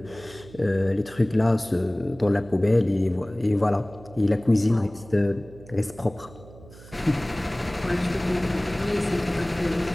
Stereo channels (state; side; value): noise; right; hum, 20 dB below the sound